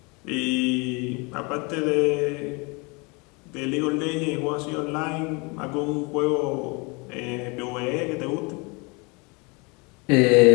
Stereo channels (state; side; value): quieter; right; 29.2 dB